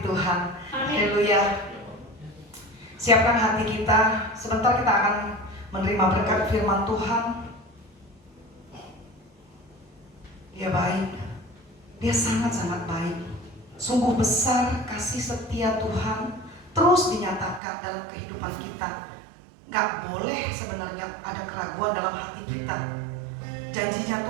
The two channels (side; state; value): left; drops out; at 17.6 s